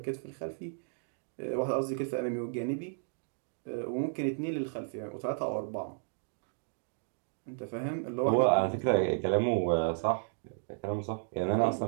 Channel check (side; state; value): left; silent; digital silence